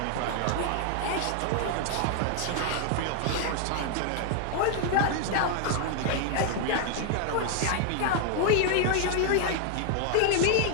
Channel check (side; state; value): both; different; correlation 0.00